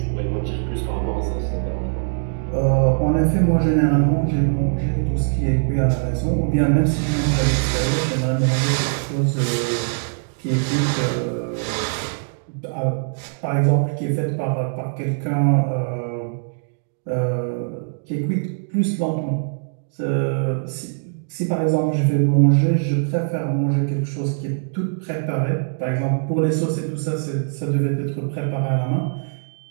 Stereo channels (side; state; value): left; silent; digital silence